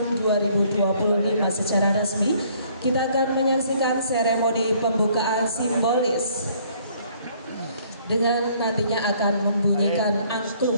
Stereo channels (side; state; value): both; inverted; correlation -0.62